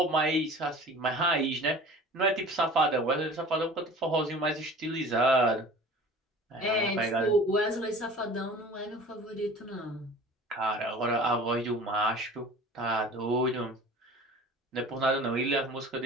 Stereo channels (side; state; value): both; normal; correlation 0.42